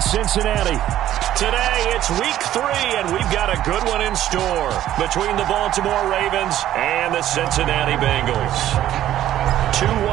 Cincinnati. Today, it's week 3, and we've got a good one in store between the Baltimore Ravens and the Cincinnati Bengals. 2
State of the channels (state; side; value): quieter; left; 12.6 dB